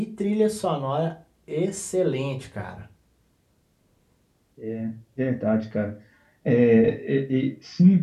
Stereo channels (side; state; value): both; identical; correlation 1.00